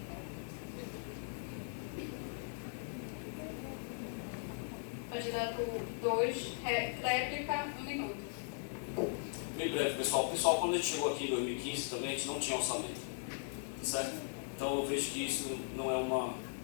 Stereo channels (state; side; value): silent; right; digital silence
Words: Candidato 2, réplica, 1 minuto. Bem breve, pessoal. Pessoal, quando a gente chegou aqui em 2015 também, a gente não tinha orçamento, certo? Então eu vejo que isso não é uma